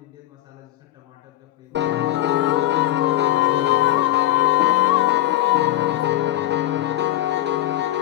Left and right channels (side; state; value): right; quieter; 15.1 dB